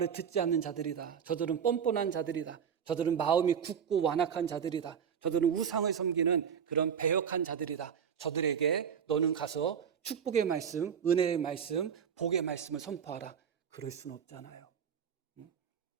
듣지 않는 자들이다. 저들은 뻔뻔한 자들이다. 저들은 마음이 굳고 완악한 자들이다. 저들은 우상을 섬기는 그런 배역한 자들이다. 저들에게 너는 가서 축복의 말씀, 은혜의 말씀, 복의 말씀을 선포하라. 그럴 수는 없잖아요.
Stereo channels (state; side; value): quieter; left; 7.6 dB